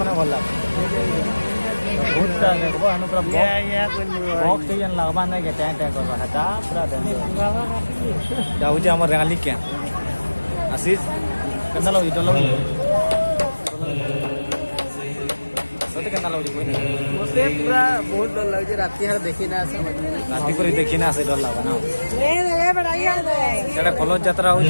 भल लागो बहुत देखो अनु पूरा बॉक्स टेजन लगवा नहीं के टैं करवा हटा पूरा जाऊ जे हमर रेंगाली क्या आशीष केना लो इटो लो सते केना लो कोई मुझे पूरा बहुत डर लग जे राती हर देखी ना समझ में राती पर देखी ना से डर लागो ना ले बढ़ाइया दे एटा कलश यात्रा हो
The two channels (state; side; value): inverted; both; correlation -1.00